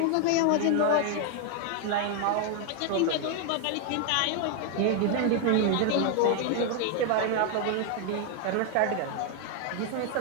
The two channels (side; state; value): both; different; correlation 0.00